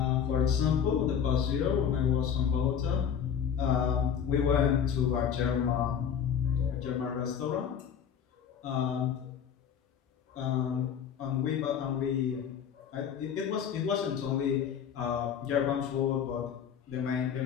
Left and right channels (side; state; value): right; quieter; 8.0 dB